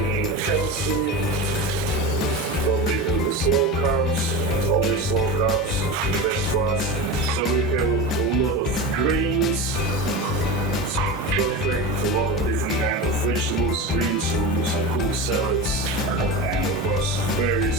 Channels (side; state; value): both; normal; correlation 0.25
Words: healthy, probably do the slow carbs, always slow carbs, the best for us. So we have a lot of grains, it's perfect, a lot of different kinds of vegetables, greens, we'll do some cooked salads, and of course